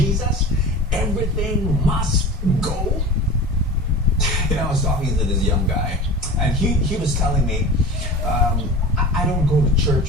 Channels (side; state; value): both; normal; correlation 0.34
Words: Everything must go? You know, I was talking to this young guy, and he was telling me, I don't go to